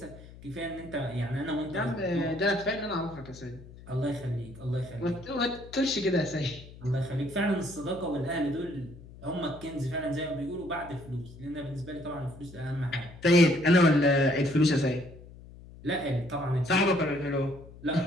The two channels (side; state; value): left; noise; hum, 18 dB below the sound